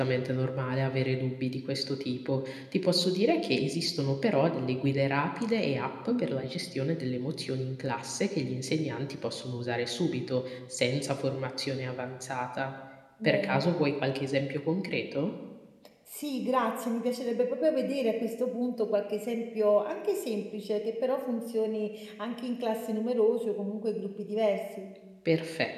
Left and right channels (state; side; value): identical; both; correlation 1.00